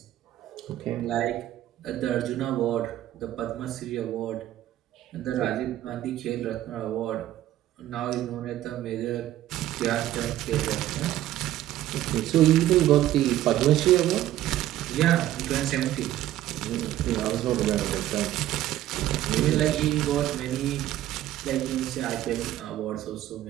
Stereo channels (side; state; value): left; quieter; 13.5 dB